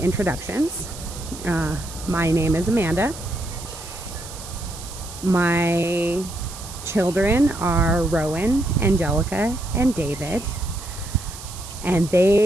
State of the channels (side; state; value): right; noise; hiss, 14 dB below the sound